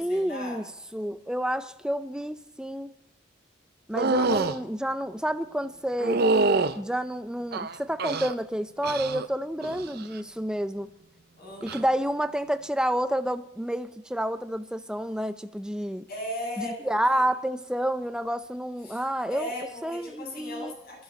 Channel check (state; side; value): normal; both; correlation 0.62